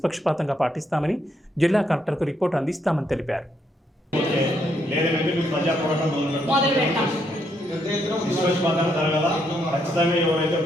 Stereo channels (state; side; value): normal; both; correlation 0.75